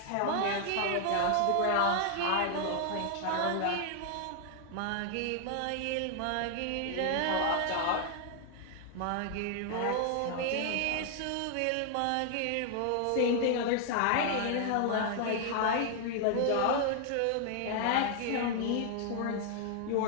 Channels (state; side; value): different; both; correlation 0.00